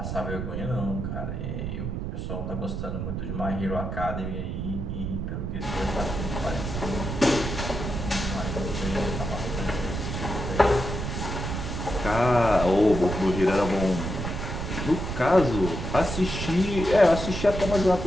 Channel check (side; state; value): right; noise; rumble, 4 dB below the sound